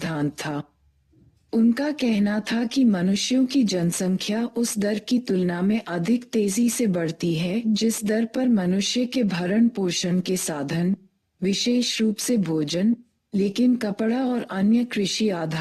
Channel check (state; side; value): identical; both; correlation 1.00